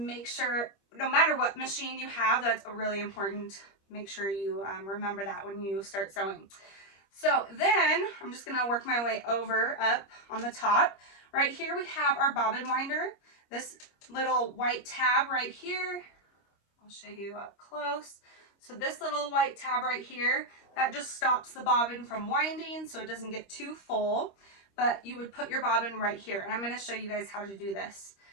sure, no matter what machine you have, that's really important. Make sure you remember that when you start sewing. So then I'm just going to work my way over up on the top. Right here we have our bobbin winder. This little white tab right here. I'll show you up close. So this little white tab right here, that just stops the bobbin from winding so it doesn't get too full. But you would put your bobbin right here. And I'm going to show you guys how to do this.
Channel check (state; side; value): late; right; 25 ms